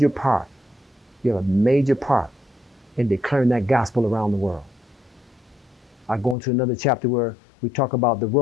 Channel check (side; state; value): right; drops out; at 6.4 s